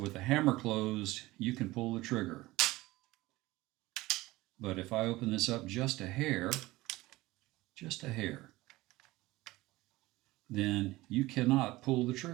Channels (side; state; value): left; quieter; 19.1 dB